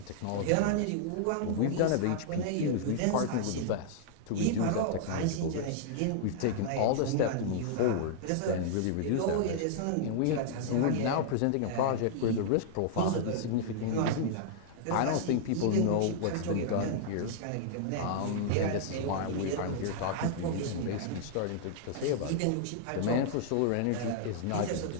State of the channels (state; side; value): different; both; correlation -0.01